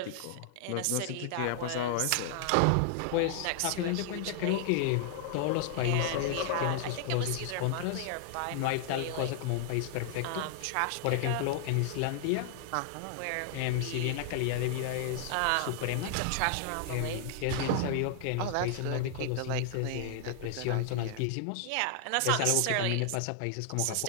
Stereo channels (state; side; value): different; both; correlation 0.00